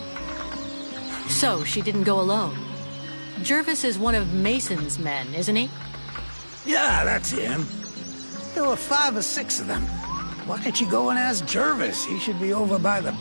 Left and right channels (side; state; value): both; inverted; correlation -1.00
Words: So, she didn't go alone. Jervis is one of Mason's men, isn't he? Yeah, that's him. There were 5 or 6 of them. Why don't you go and ask Jervis? He should be over by the